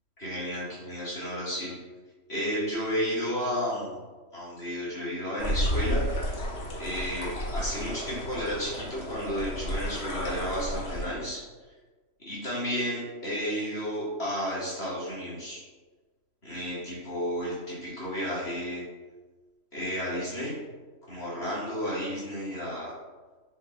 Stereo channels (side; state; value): right; late; 3.0 ms